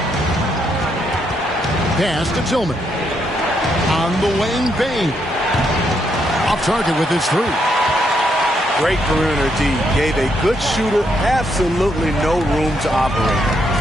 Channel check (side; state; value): both; normal; correlation 0.77